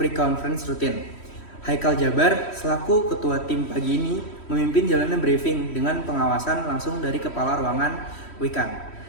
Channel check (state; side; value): late; right; 3.1 ms